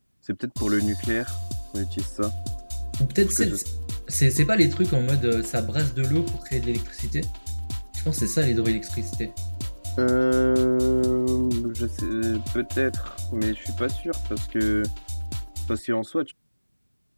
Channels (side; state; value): both; inverted; correlation -1.00